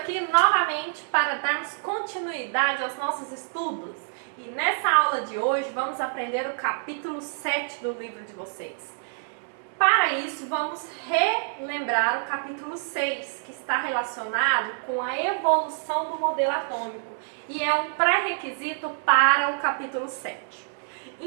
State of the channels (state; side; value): silent; left; digital silence